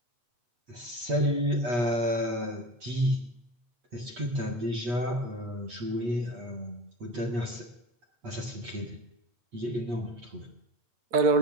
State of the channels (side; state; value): left; late; 8.3 ms